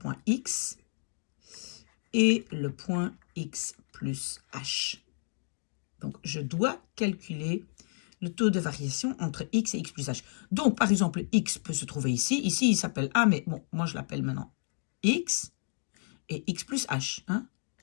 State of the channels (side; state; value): right; silent; 57 dB below the other